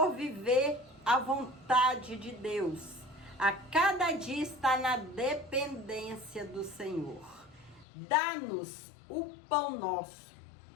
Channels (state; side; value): drops out; right; at 7.9 s